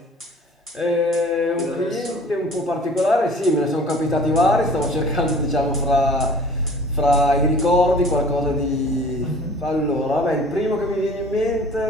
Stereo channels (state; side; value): normal; both; correlation 0.47